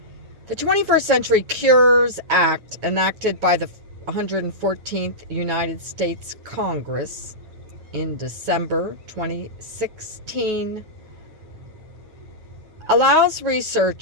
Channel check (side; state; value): left; late; 9.3 ms